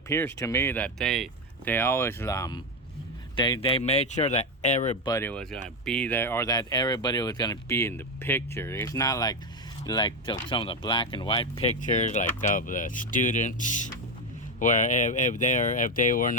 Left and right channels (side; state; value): both; normal; correlation 0.11